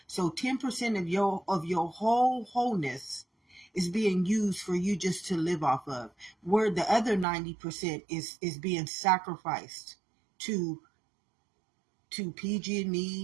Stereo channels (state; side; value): drops out; left; at 7.2 s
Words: So 10% of your whole wholeness is being used for you just to live off of, where the other 90% is being sacrificed to